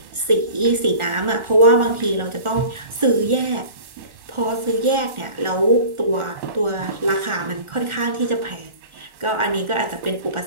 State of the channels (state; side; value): late; left; 1.4 ms